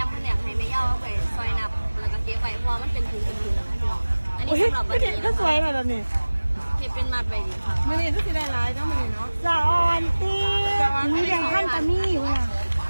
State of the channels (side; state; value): both; inverted; correlation -1.00